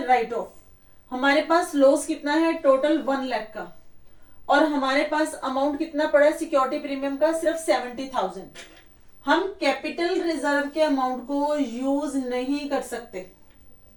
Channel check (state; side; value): identical; both; correlation 1.00